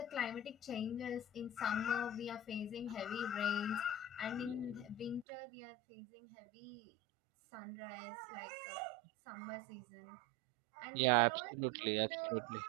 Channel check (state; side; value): drops out; left; at 5.2 s